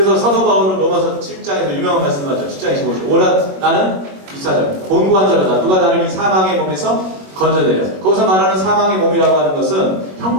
사도 바울은 로마서 7장에서 유명한 말씀을 하죠. 7장 25절. 오라 나는 24절. 곤고한 자로다. 누가 나를 이 사망의 몸에서 건져내려. 거기서 말하는 사망의 몸이라고 하는 것은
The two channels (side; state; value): left; late; 21 ms